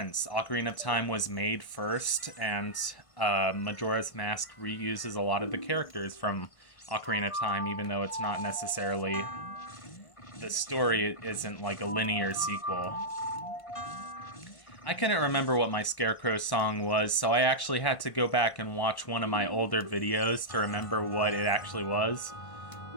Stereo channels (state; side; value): late; right; 1.5 ms